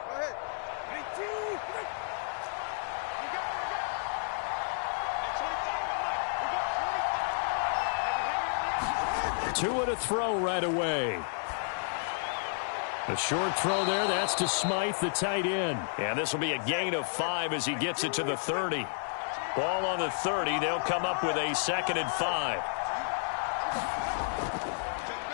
Two and a throw right away. A short throw there. That's to Smythe, the tight end. And this will be a gain of 5 as he gets it to the 30. Ball on the 30. They'll come up with a 2nd and 5.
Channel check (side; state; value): right; silent; digital silence